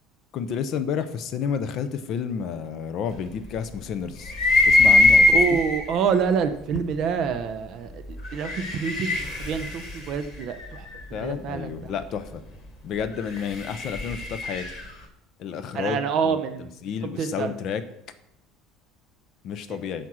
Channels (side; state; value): both; normal; correlation 0.62